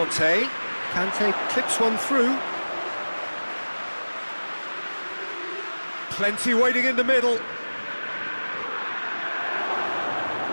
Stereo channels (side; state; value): both; inverted; correlation -1.00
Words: Kante clips one through. Plenty waiting in the middle.